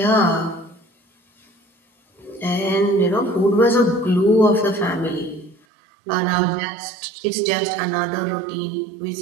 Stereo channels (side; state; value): left; drops out; at 5.6 s